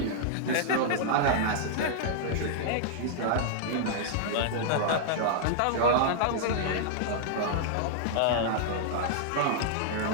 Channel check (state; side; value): different; both; correlation -0.01